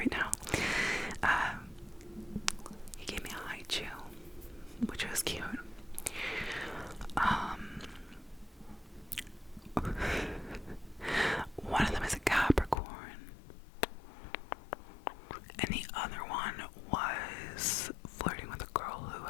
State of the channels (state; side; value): drops out; right; at 12.8 s